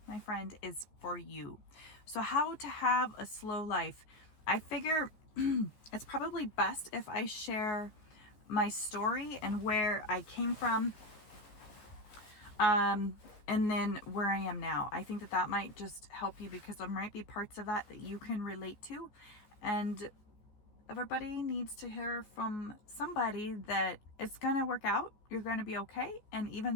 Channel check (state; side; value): late; right; 14 ms